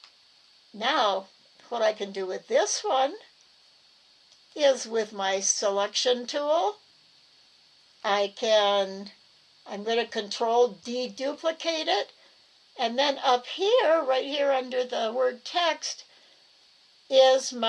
Now, what I can do with this one is with my selection tool, I'm going to control deduplicate it, and then up here, right here under the word text, is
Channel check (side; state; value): both; identical; correlation 1.00